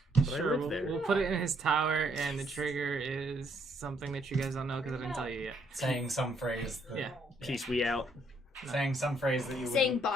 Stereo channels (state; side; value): normal; both; correlation 0.70